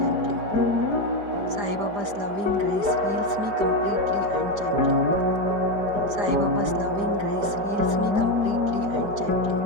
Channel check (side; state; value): left; late; 5.0 ms